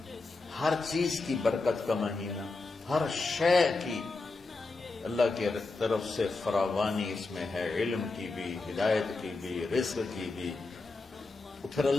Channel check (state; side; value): quieter; right; 3.6 dB